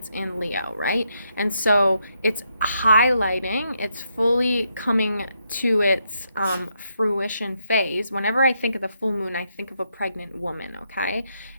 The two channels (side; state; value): both; inverted; correlation -0.79